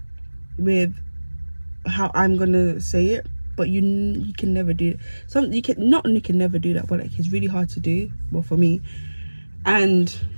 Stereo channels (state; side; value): inverted; both; correlation -1.00